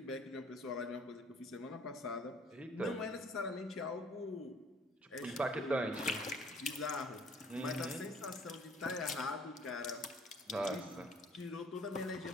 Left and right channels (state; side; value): normal; both; correlation 0.57